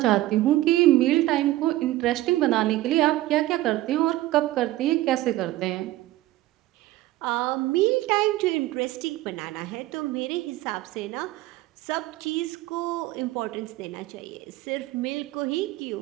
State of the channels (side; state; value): left; quieter; 16.4 dB